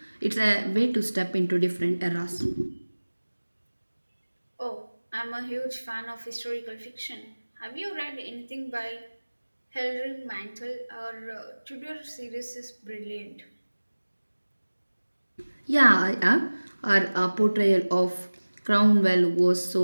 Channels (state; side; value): inverted; both; correlation -1.00